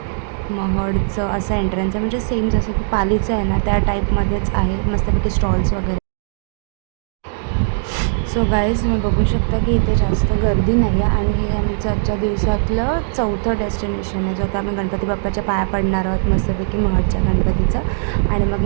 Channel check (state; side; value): silent; left; digital silence